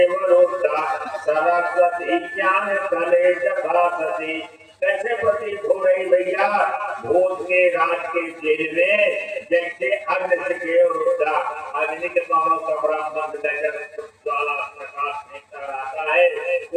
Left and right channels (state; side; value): identical; both; correlation 1.00